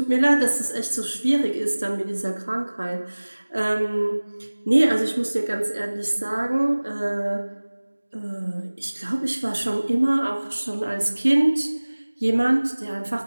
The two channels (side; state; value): both; inverted; correlation -1.00